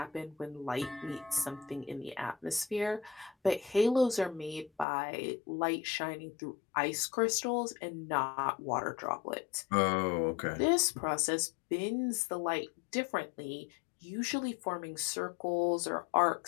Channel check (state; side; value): drops out; right; at 4.9 s